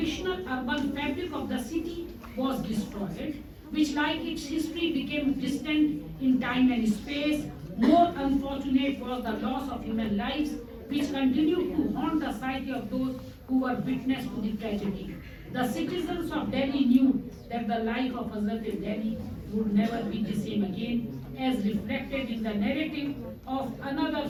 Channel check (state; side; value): identical; both; correlation 1.00